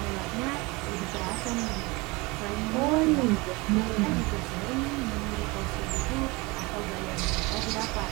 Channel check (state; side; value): quieter; left; 24.9 dB